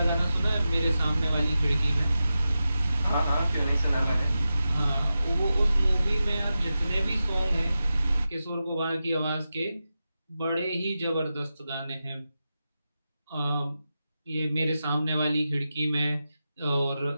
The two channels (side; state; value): both; inverted; correlation -0.91